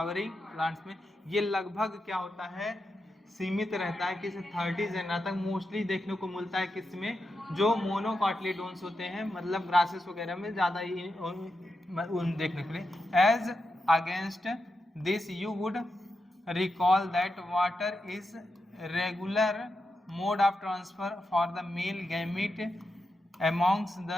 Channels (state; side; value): normal; both; correlation 0.87